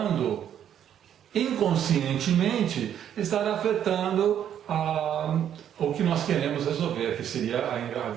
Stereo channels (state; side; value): quieter; left; 9.8 dB